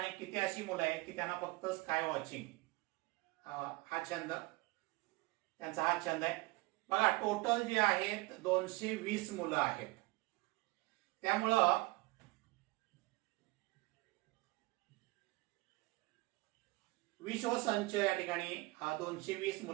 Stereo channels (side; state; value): left; quieter; 23.2 dB